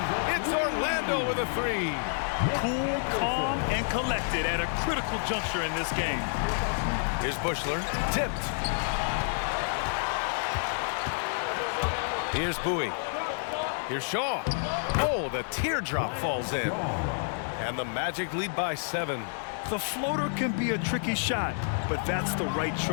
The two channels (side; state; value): right; silent; digital silence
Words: it's Orlando Orlando with a three. Cool, calm, and collected at a critical juncture in this game. Here's Bushler, tipped. Here's Bowie. Here's Shaw. Oh, the teardrop falls in. And the Magic lead by 7. The floater can be a tricky shot, but that's the right